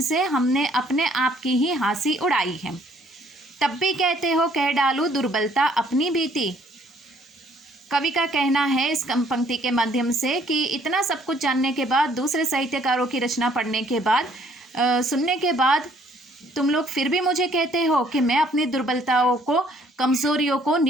हमने अपने आप की ही हंसी उड़ाई है। तब भी कहते हो कह डालूं दुर्बलता अपनी बीती। कवि का कहना है इस पंक्ति के माध्यम से कि इतना सब कुछ जानने के बाद, दूसरे साहित्यकारों की रचना पढ़ने के बाद, सुनने के बाद तुम लोग फिर भी मुझे कहते हो कि मैं अपनी दुर्बलताओं को, कमजोरियों को,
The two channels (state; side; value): normal; both; correlation 0.63